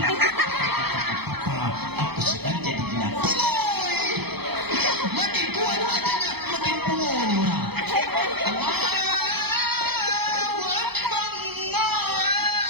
Papa, aku sedang jadi gila. Makin kuat adanya, makin pungu nih orang.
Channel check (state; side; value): late; left; 0.98 ms